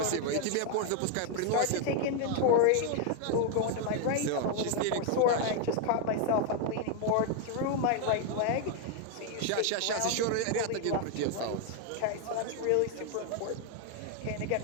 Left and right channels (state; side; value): different; both; correlation 0.01